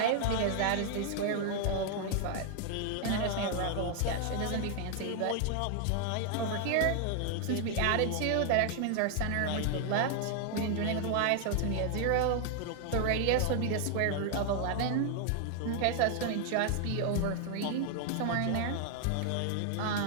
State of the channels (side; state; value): both; different; correlation 0.00